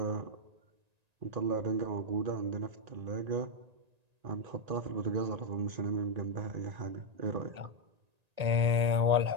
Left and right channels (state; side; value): late; left; 1.9 ms